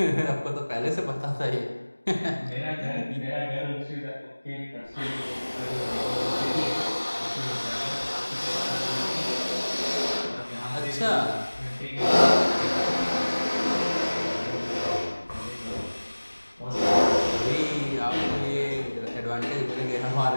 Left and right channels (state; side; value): inverted; both; correlation -1.00